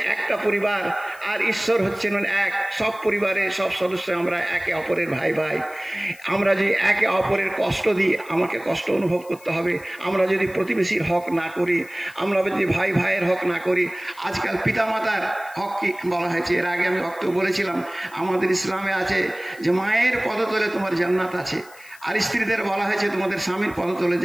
একটা পরিবার, আর ঈশ্বর হচ্ছেন এক। সব পরিবারে সব সদস্য আমরা একে অপরের ভাই ভাই। আমরা যদি একে অপরের কষ্ট দিই, আমাকে কষ্ট অনুভব করতে হবে। আমরা যদি প্রতিবেশীর হক না করি, আমরা যদি ভাই ভাইয়ের হক না করি, আজকাল পিতামাতার হক কি বলা হয়েছে? এর আগে আমি বক্তব্য বলেছিলাম, আমাদের ইসলামে আছে যে মায়ের পদতলে তোমার জান্নাত আছে, আর স্ত্রীদের বলা হয়েছে তোমাদের স্বামীর পদতলে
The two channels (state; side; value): noise; left; hiss, 23 dB below the sound